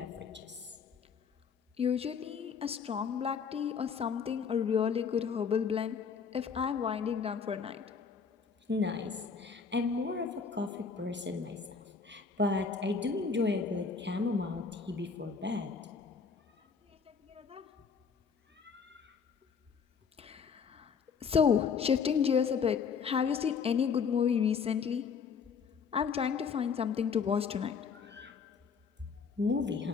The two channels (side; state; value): right; quieter; 6.0 dB